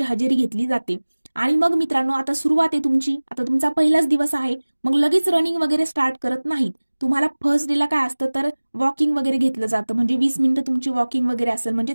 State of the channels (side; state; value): both; inverted; correlation -1.00